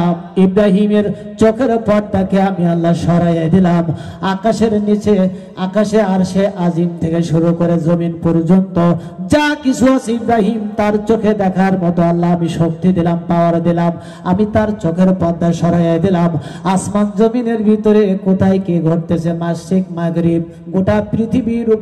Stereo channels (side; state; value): both; identical; correlation 1.00